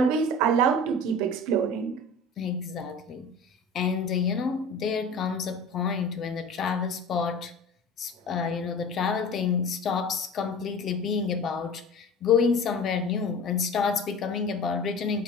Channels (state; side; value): normal; both; correlation 0.38